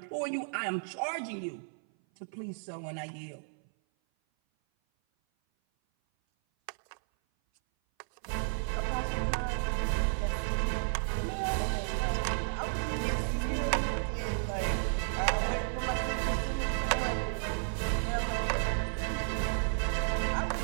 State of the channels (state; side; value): silent; left; 56 dB below the other